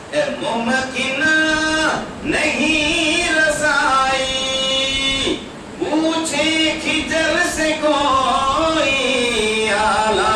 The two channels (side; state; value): both; identical; correlation 1.00